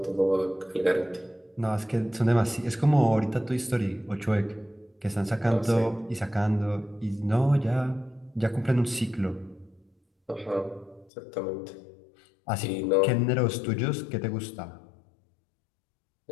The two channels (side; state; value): right; drops out; at 11.1 s